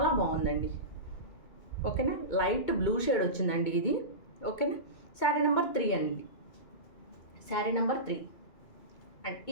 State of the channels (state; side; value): late; right; 2.2 ms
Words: బాగుందండి, ఓకేనా. లైట్ బ్లూ షేడ్ వచ్చిందండి ఇది, ఓకేనా. శారీ నెంబర్ 3 అండి, శారీ నెంబర్ 3. అండ్